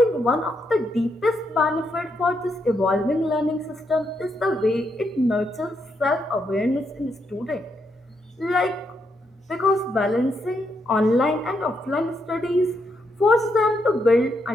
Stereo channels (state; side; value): normal; both; correlation 0.79